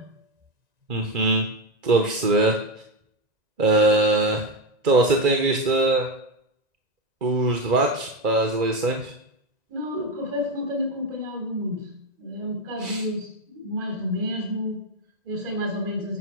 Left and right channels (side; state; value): left; late; 1.9 ms